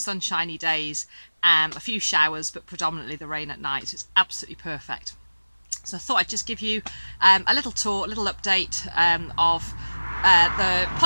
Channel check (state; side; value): inverted; both; correlation -1.00